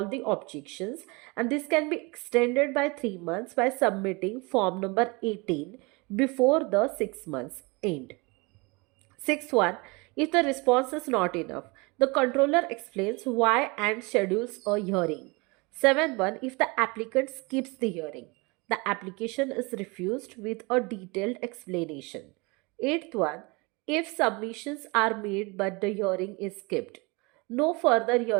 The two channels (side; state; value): left; quieter; 27.1 dB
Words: the objections, and this can be extended by 3 months by submitting form number 18 before the 6 months end. Sixth one, if the response is not enough, the controller explains why and schedules a hearing. Seventh one, if the applicant skips the hearing, the application is refused with a detailed explanation. Eighth one, if submissions are made but the hearing is skipped, no further